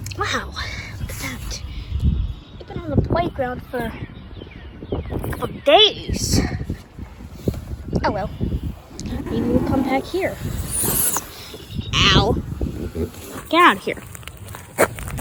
Wow, look at that. I've been on the playground for a couple of days. Oh well, maybe we'll come back here. Ow. Get out of here.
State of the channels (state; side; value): identical; both; correlation 1.00